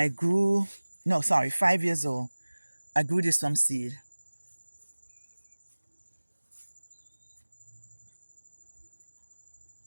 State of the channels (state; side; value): inverted; both; correlation -1.00